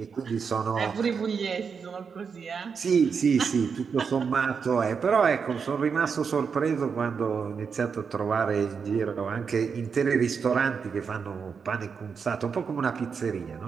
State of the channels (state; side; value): quieter; left; 6.0 dB